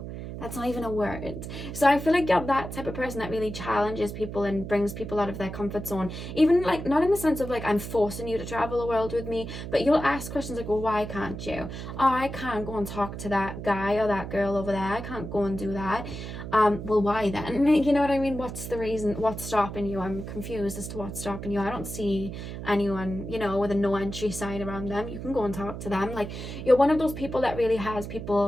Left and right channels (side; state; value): right; noise; hum, 8 dB below the sound